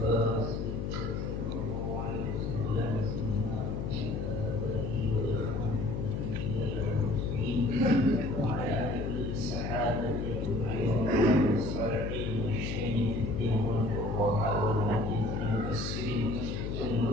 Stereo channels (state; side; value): noise; left; hum, 3 dB below the sound